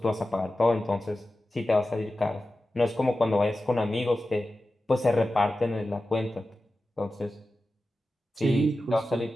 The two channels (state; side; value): normal; both; correlation 0.94